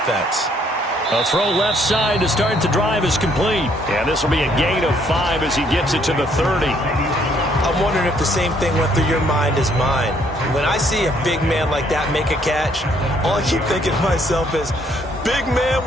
A throw left side to start the drive is complete. And this will be a gain of 5 as he gets it to the 30. I'm wondering if the same thing went through your mind as mine. When I see a big man like that make a catch, all I keep thinking to myself is, big man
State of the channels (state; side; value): normal; both; correlation 0.67